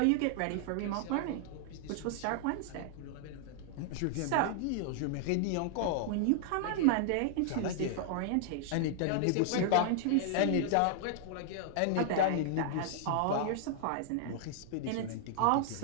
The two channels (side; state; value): both; different; correlation -0.01